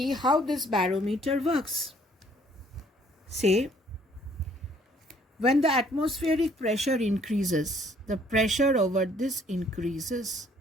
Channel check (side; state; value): both; normal; correlation 0.61